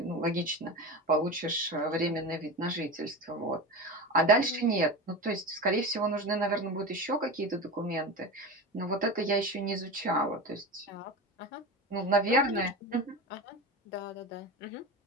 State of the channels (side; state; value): both; normal; correlation 0.26